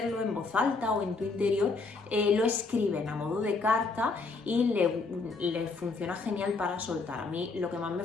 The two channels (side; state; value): right; quieter; 4.0 dB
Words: en voz alta o en tu interior, lo escriben a modo de carta y le funciona genial para soltar. A mí lo que más me